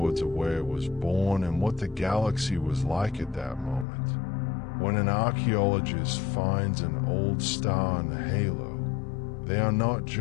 of where it was born and what the galaxy was like at that moment. When an archaeologist finds an old star in the halo, they are not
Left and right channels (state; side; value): drops out; right; at 3.9 s